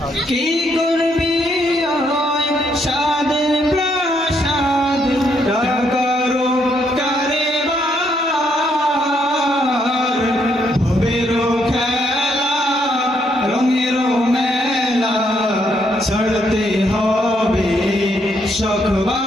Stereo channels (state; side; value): normal; both; correlation 0.74